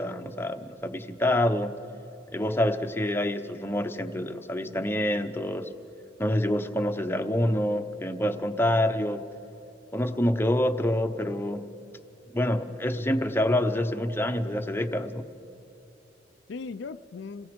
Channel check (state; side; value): normal; both; correlation 0.79